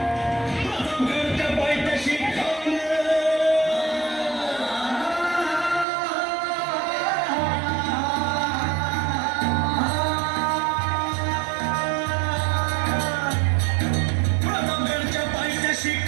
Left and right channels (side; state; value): left; drops out; at 5.9 s